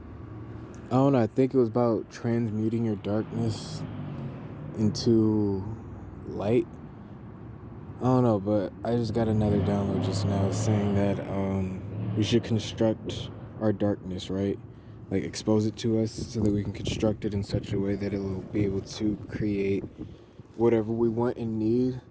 I don't know, I think it was about transmuting your darkness into light. I don't know, but I just got another download just now saying that we should construct our darkness, right? Like, expose it to us so that we can construct it in such a way that it will be able to create whatever we want and need,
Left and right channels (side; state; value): both; identical; correlation 1.00